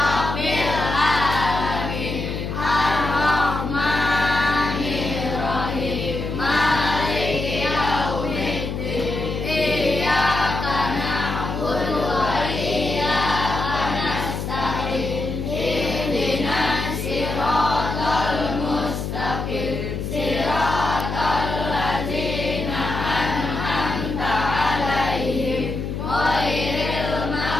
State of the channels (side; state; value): left; noise; hum, 4 dB below the sound